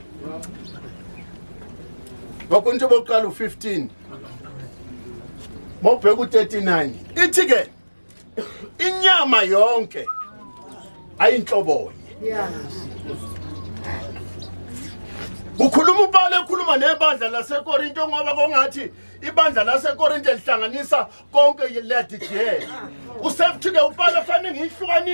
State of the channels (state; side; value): inverted; both; correlation -1.00